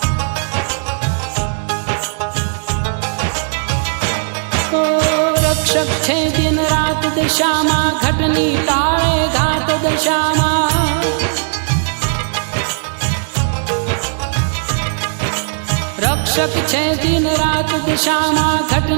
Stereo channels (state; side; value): silent; left; digital silence